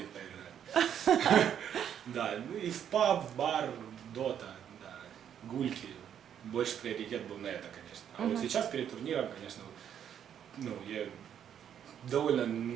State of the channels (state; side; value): quieter; left; 9.2 dB